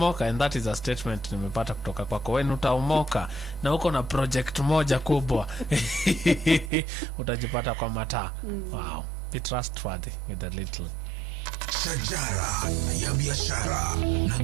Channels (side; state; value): left; drops out; at 6.7 s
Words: and that is a statement nimepata kutoka kwako, when utaomoka na uko na project moja kubwa, utajipata kwa mataa. Wow. Be trustworthy with a little. Shajara ya biashara na